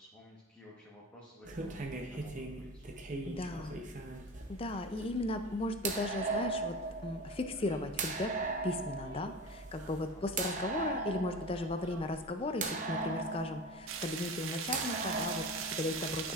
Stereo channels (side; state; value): both; normal; correlation 0.32